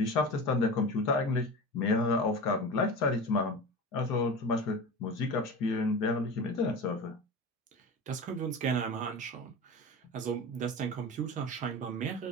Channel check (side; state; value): both; normal; correlation 0.30